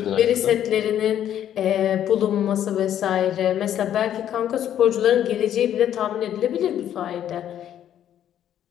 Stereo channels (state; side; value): quieter; right; 10.6 dB